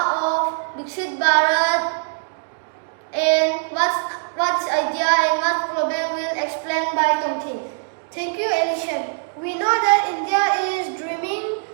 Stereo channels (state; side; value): silent; left; digital silence